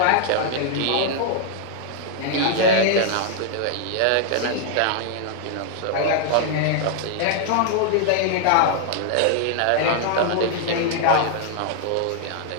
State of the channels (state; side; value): different; both; correlation 0.00